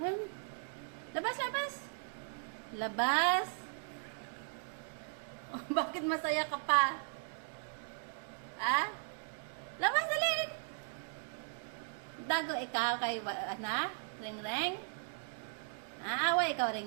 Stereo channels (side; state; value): left; silent; digital silence